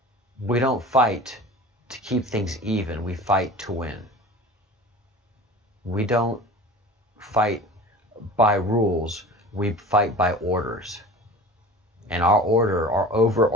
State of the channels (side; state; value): both; normal; correlation 0.39